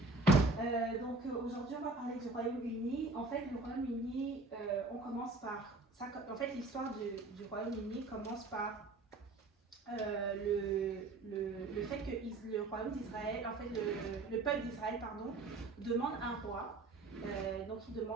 Donc aujourd'hui on va parler du Royaume-Uni. En fait, le Royaume-Uni, on commence par ça. En fait, l'histoire du Royaume-Uni commence par le fait que le royaume d'Israël, en fait le peuple d'Israël, pardon, demande un roi. Donc il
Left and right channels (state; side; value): quieter; left; 3.3 dB